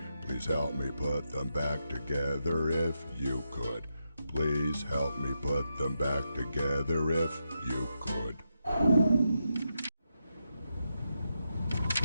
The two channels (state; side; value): inverted; both; correlation -0.86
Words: Please help me put them back together if you could. Please help me put them back together if you could.